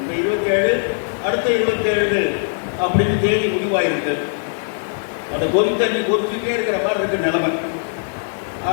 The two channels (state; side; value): silent; right; digital silence